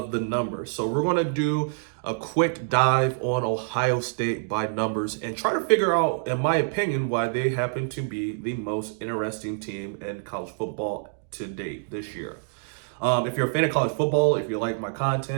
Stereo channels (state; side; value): silent; left; digital silence